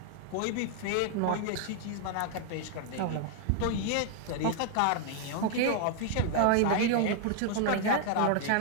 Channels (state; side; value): different; both; correlation 0.00